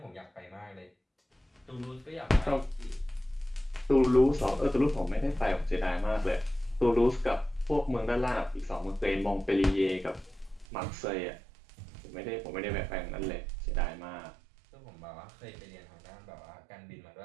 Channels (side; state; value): left; drops out; at 10.7 s